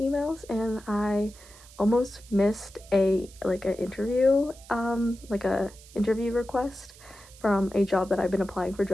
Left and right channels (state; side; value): noise; right; hiss, 22 dB below the sound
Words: and I almost missed an interview request from a job that I've been applying for